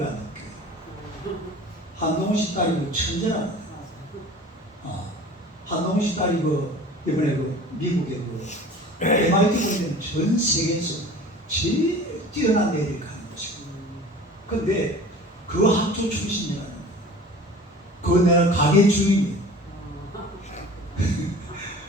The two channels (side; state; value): both; normal; correlation 0.42